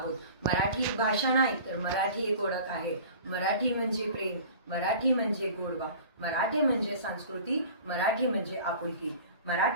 मराठी एक भाषा नाही तर मराठी एक ओळख आहे। मराठी म्हणजे प्रेम, मराठी म्हणजे गोडवा, मराठी म्हणजे संस्कृती, मराठी म्हणजे आपुलकी।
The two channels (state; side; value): inverted; both; correlation -0.42